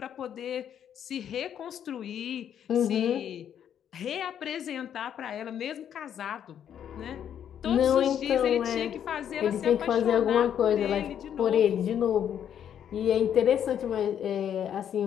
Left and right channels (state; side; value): quieter; right; 9.3 dB